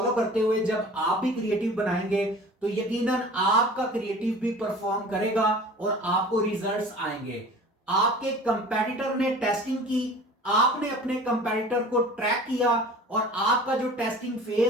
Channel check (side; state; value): both; normal; correlation 0.42